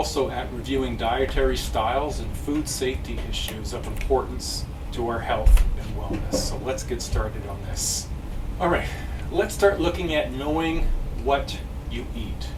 at reviewing dietary styles and food safety issues of importance to our health and wellness. So let's get started on this. All right, let's start looking at knowing what you eat.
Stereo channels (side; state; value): both; identical; correlation 1.00